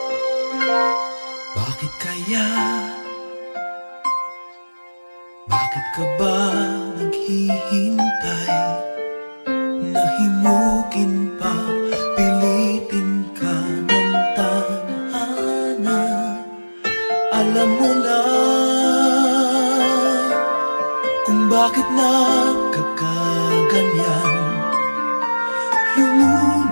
Bakit kaya? Bakit ka ba naghihintay? Nahimukin pa, pilitin ka ng tadhana. Alam mo na kung bakit nagkakaganyan.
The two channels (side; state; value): both; inverted; correlation -1.00